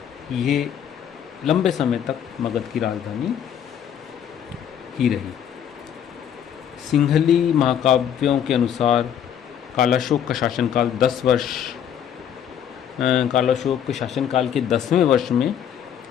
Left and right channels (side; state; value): right; quieter; 9.2 dB